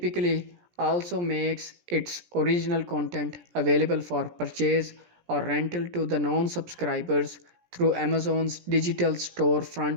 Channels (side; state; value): left; late; 17 ms